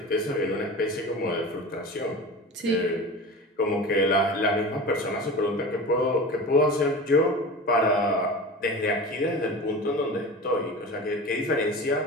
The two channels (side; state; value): both; normal; correlation 0.33